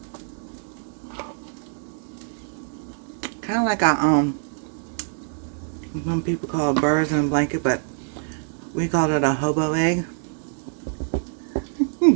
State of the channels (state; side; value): silent; left; digital silence